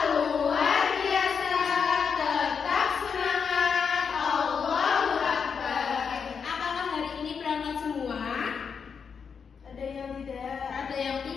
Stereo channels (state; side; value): quieter; right; 6.3 dB